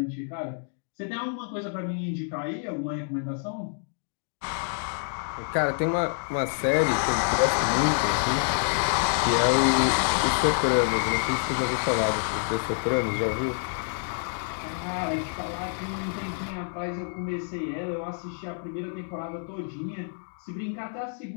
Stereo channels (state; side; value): silent; right; digital silence